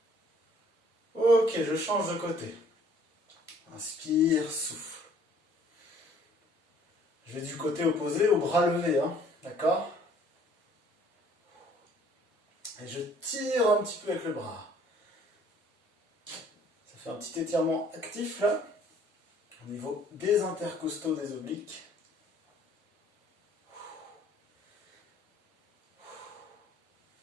Ok, je change de côté. Inspire, souffle. Je vais du côté opposé au bras levé, d'accord? Et je tire un petit peu avec le bras. Ça fait un petit étirement actif là, au niveau des intercostaux des obliques.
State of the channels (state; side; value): normal; both; correlation 0.58